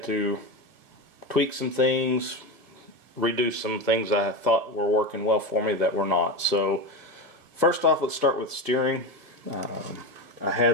to tweak some things, redo some things I thought were working well for me that were not. So first off, let's start with steering. I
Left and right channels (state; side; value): late; left; 1.6 ms